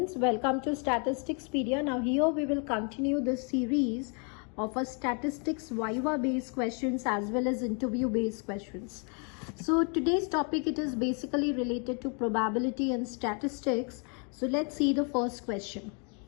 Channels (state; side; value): quieter; right; 37.5 dB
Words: welcome to Statisticspedia. Now here we will continue the series of a statistics Viva based questions as well as interview based questions. So today's topic, it is basically related to probability and statistics. So let's see the first question.